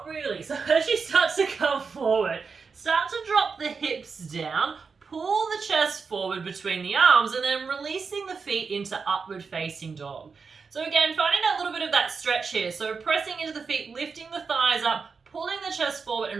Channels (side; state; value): left; quieter; 5.2 dB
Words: really. So as you start to come forward, start to drop the hips down, pull the chest forward between the arms, and then releasing the feet into upward facing dog. So again, finding that little bit of that stretch here. So pressing into the feet, lifting the thighs up, pulling the chest forward